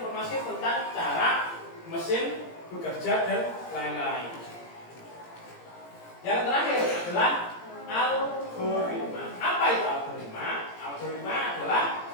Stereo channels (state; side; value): late; right; 17 ms